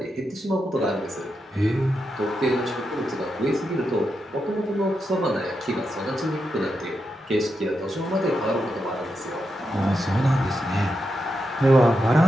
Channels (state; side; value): normal; both; correlation 0.86